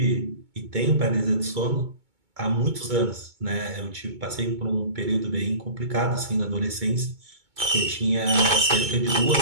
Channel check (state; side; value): late; left; 2.2 ms